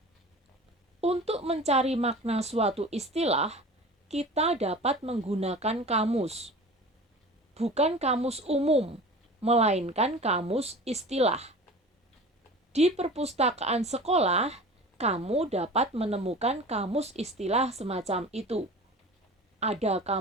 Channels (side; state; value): both; normal; correlation 0.38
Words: Untuk mencari makna suatu istilah, kita dapat menggunakan kamus. Bukan kamus umum, melainkan kamus istilah. Di perpustakaan sekolah, kamu dapat menemukan kamus istilah semacam itu. Ada